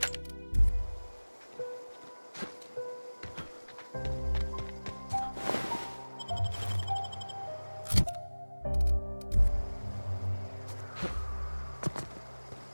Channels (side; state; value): both; inverted; correlation -1.00